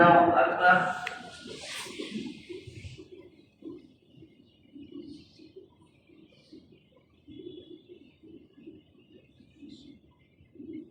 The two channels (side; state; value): both; identical; correlation 1.00